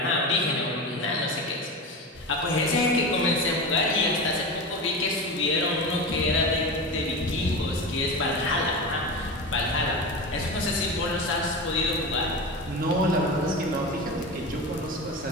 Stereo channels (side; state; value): both; normal; correlation 0.25